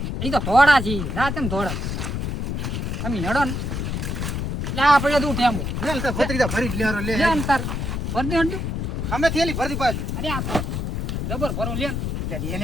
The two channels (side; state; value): left; noise; rumble, 2 dB below the sound